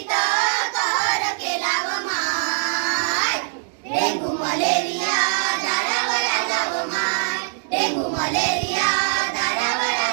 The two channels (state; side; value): silent; left; digital silence